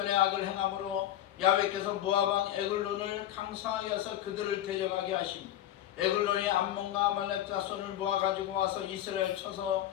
악을 행함으로 야훼께서 모압 왕 에글론을 강성하게 해서 그들을 대적하게 하십니다. 에글론이 암몬과 아말렉 자손을 모아 가지고 와서 이스라엘 쳐서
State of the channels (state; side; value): quieter; right; 12.3 dB